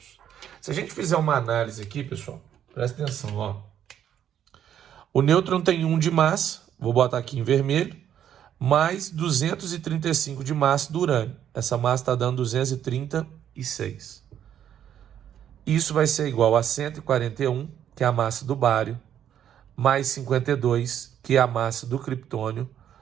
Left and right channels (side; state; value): left; quieter; 9.9 dB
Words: Se a gente fizer uma análise aqui, pessoal, presta atenção, ó. O nêutron tem 1 de massa, vou botar aqui em vermelho, mais 235 de massa do urânio. Essa massa está dando 236. Isso vai ser igual a 141, que é a massa do bário, mais 52, que é a massa do criptônio,